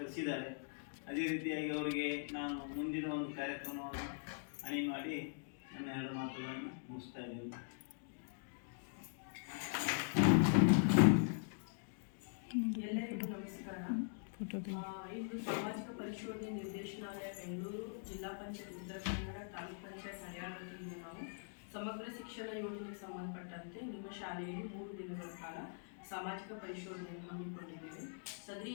ಅದೇ ರೀತಿಯಾಗಿ ಅವರಿಗೆ ನಾನು ಮುಂದಿನ ಒಂದು ಕಾರ್ಯಕ್ರಮವನ್ನು ಅಣಿ ಮಾಡಿ ನನ್ನ ಎರಡು ಮಾತುಗಳನ್ನು ಮುಗಿಸ್ತಾ ಇದ್ದೇನೆ. ಎಲ್ಲರಿಗೂ ನಮಸ್ಕಾರ. ಇಂದು ಸಾಮಾಜಿಕ ಪರಿಶೋಧನೆ ನಿರ್ದೇಶನಾಲಯ ಬೆಂಗಳೂರು, ಜಿಲ್ಲಾ ಪಂಚಾಯತ್ ಉತ್ತರ ಕನ್ನಡ, ತಾಲೂಕು ಪಂಚಾಯತ್ ಹರಿಯಾಣ ವತಿಯಿಂದ ನಾವು ಸಮಗ್ರ ಶಿಕ್ಷಣ ಯೋಜನೆಗೆ ಸಂಬಂಧಪಟ್ಟಂತೆ ನಿಮ್ಮ ಶಾಲೆಯಲ್ಲಿ 3 ದಿನಗಳ ಕಾಲ ಸಾಮಾಜಿಕ ಪರಿಶೋಧನೆಯನ್ನು ಹಮ್ಮಿಕೊಂಡಿದ್ದೇವೆ. ಸದರಿ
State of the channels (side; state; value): right; silent; digital silence